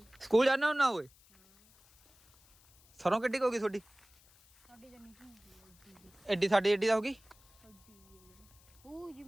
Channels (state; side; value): noise; left; hiss, 28 dB below the sound